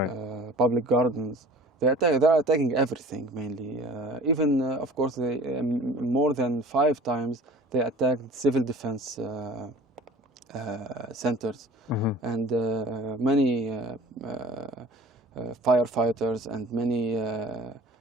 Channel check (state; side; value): normal; both; correlation 0.44